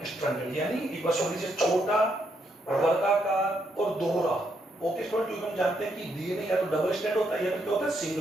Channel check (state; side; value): normal; both; correlation 0.77